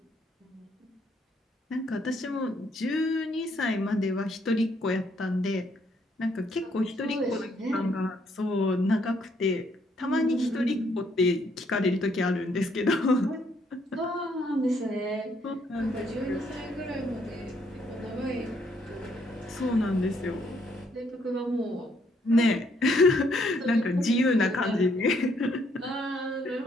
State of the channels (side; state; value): both; normal; correlation 0.70